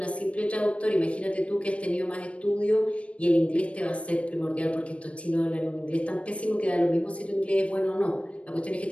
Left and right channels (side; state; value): right; late; 0.062 ms